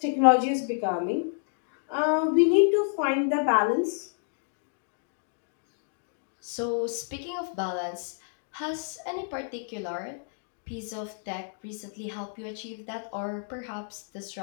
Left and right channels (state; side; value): silent; right; digital silence